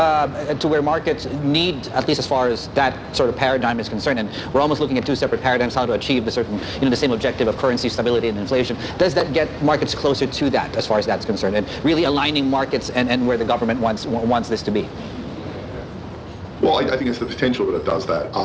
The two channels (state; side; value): identical; both; correlation 1.00